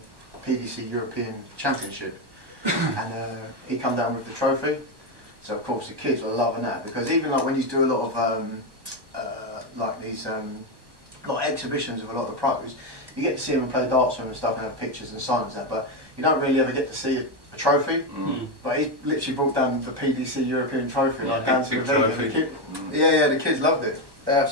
PDC European Championship, and he come down with the trophy. So of course the kids were loving that, because even like when you do a lot of like these like exhibitions of a lot of the pros, you get to see them play darts with them and stuff and have pictures and signs and that, but you don't really ever get to see a trophy. But he literally brought down the PDC European trophy, like down to the venue. The kids loved it. They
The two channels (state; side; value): late; left; 1.1 ms